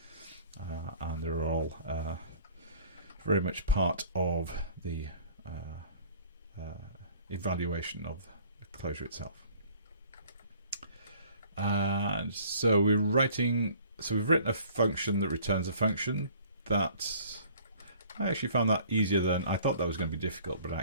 and they're all very much part of the evaluation of the Clojure itself. And so we've written a function that returns a function. That I actually found that easier than I thought. That was going to be difficult, but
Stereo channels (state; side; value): inverted; both; correlation -0.53